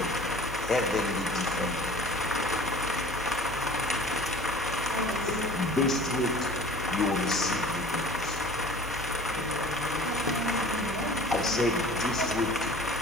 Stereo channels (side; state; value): both; normal; correlation 0.44